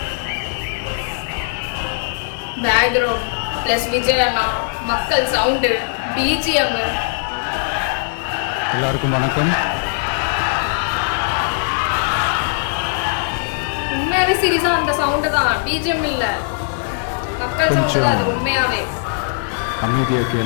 பேக்ரவுண்ட் பிளஸ் விஜய் அண்ணா, மக்கள் சவுண்டு, பிஜிஎம். எல்லாருக்கும் வணக்கம். உண்மையாவே சீரியஸா அந்த சவுண்டு தான், பிஜிஎம் இல்ல, மக்கள் சவுண்டு தான் அது உண்மையாவே. அமைதியா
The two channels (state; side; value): silent; right; digital silence